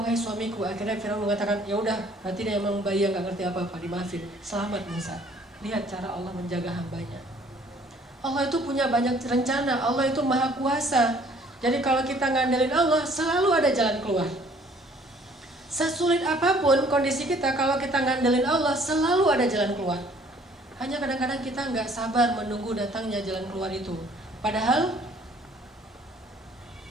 suamiku. Akhirnya Firaun mengatakan, ya udah, berarti dia memang bayi yang gak ngerti apa-apa, dimaafin. Selamat Musa. Lihat cara Allah menjaga hambanya. Allah itu punya banyak rencana, Allah itu maha kuasa. Jadi kalau kita ngandelin Allah, selalu ada jalan keluar. Sesulit apapun kondisi kita, kalau kita ngandelin Allah, selalu ada jalan keluar. Hanya kadang-kadang kita nggak sabar menunggu datangnya jalan keluar itu. Padahal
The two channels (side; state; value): both; normal; correlation 0.58